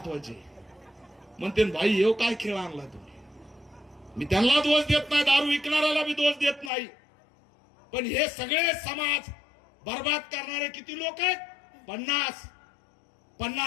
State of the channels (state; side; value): drops out; right; at 6.7 s